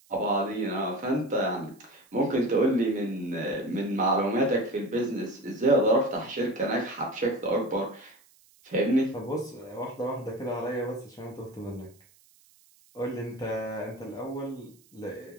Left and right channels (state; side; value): noise; right; hiss, 29 dB below the sound